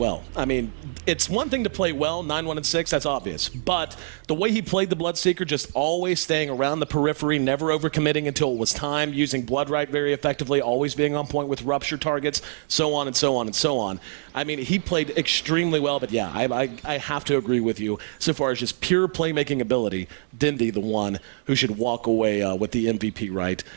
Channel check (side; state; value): left; silent; 62 dB below the other